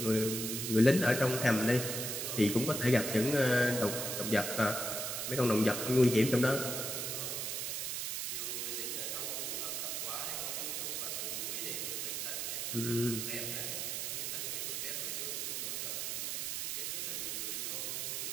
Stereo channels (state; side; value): noise; right; hiss, 2 dB below the sound